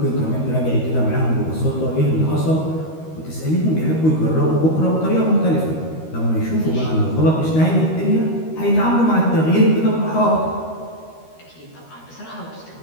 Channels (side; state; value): right; late; 13 ms